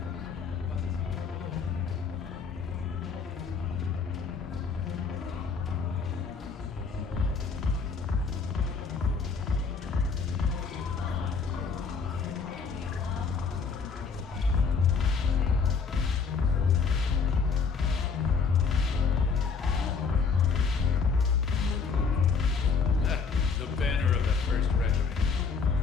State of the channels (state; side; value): quieter; right; 5.4 dB